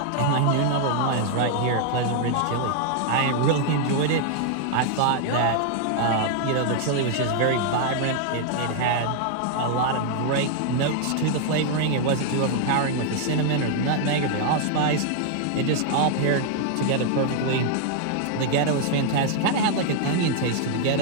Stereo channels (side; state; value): both; different; correlation 0.00